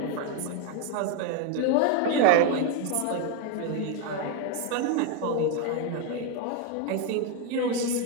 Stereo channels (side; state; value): both; different; correlation 0.01